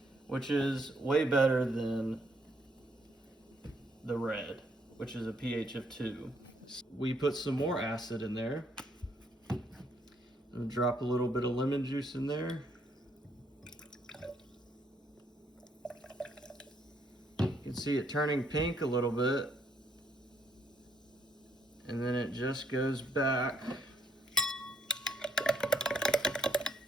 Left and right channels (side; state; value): both; normal; correlation 0.71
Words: which is way better than the red, which is a pH of 2. We put some more acid in there. And drop a little bit of lemon juice in there. You can see it turning pink a little bit. And then it just goes back